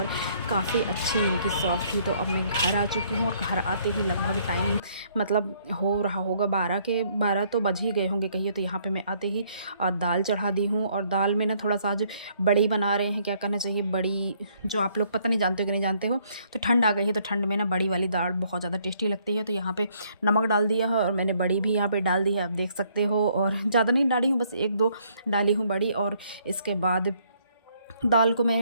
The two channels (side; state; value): both; inverted; correlation -0.67